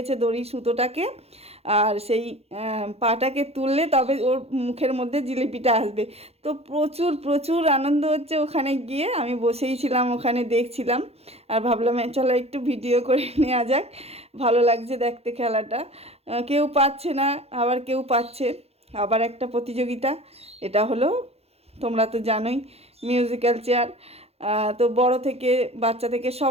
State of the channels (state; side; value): late; left; 0.30 ms